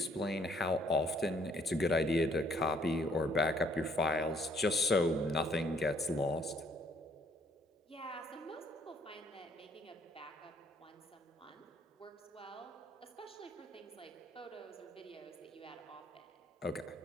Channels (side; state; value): both; normal; correlation 0.64